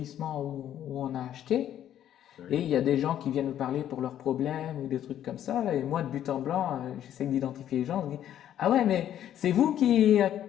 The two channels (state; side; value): quieter; right; 11.0 dB